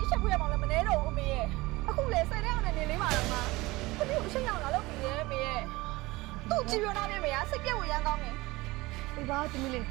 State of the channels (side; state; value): left; quieter; 21.2 dB